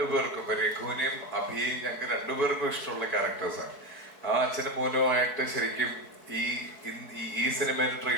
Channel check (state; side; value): late; right; 4.7 ms